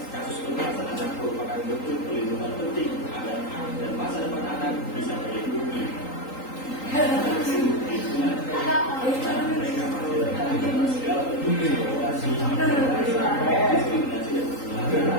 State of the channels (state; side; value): late; right; 3.8 ms